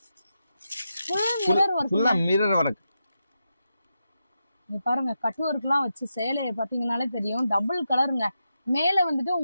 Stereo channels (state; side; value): inverted; both; correlation -0.87